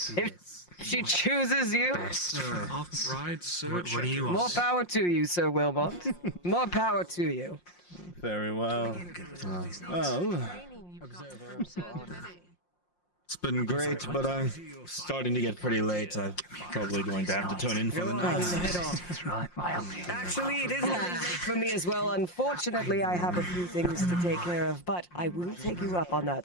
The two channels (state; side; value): late; right; 5.6 ms